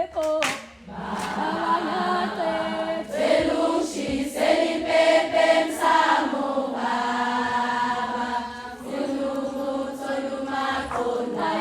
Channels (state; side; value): identical; both; correlation 1.00